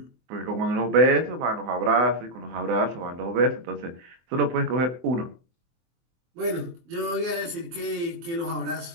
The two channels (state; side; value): late; left; 24 ms